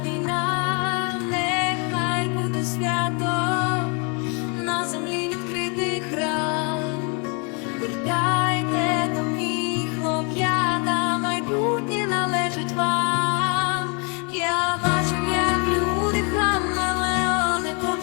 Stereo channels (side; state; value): right; quieter; 34.4 dB